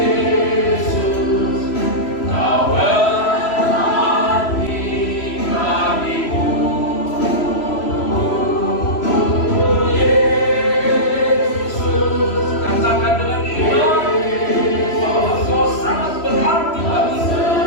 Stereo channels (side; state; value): right; late; 3.0 ms